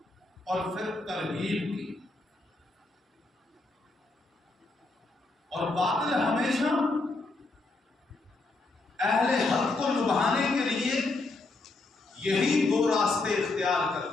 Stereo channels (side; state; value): right; quieter; 3.3 dB